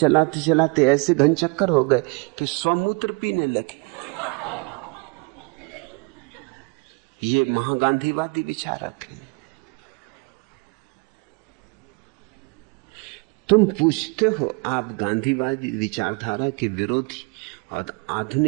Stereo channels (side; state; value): left; quieter; 31.7 dB